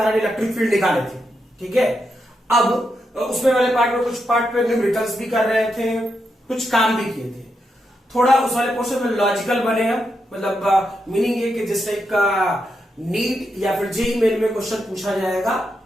इलेक्ट्रिक फील्ड निकाले थे। ठीक है, अब उसमें वाले पार्ट में कुछ पार्ट पे न्यूमेरिकल्स भी कर रहे थे, कुछ काम भी किए थे। थोड़ा उस वाले पोर्शन में लॉजिकल बने हैं, मतलब मीनिंग ये कि जिस टाइप का नीट या फिर जेईई मेन में क्वेश्चन पूछा जाएगा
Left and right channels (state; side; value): normal; both; correlation 0.84